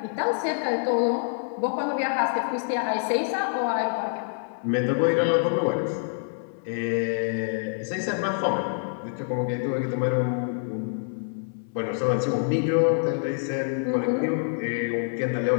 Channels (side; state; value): right; silent; 61 dB below the other